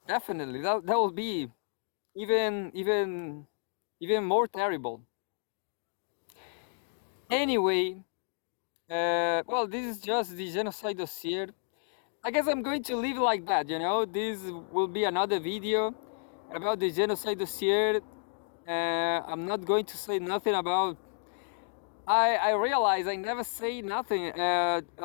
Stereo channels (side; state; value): right; silent; digital silence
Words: definitely. That will be even more terrible. Anyway, Well, this is just the genocide dossier. I guess I'm going to leave it like that, you know. This will be another video about the genocide dossier. I'm not going to say nothing about. I realize I never say nothing